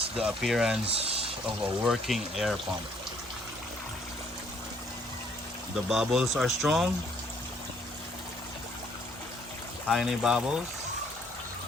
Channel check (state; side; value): normal; both; correlation 0.64